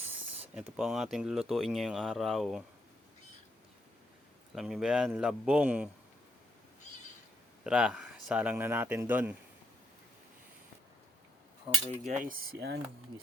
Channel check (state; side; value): normal; both; correlation 0.77